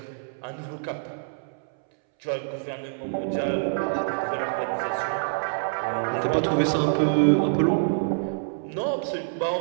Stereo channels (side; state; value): left; silent; 61 dB below the other